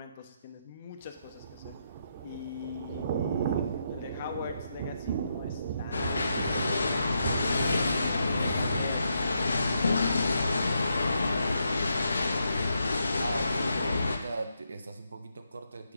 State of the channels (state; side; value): inverted; both; correlation -0.81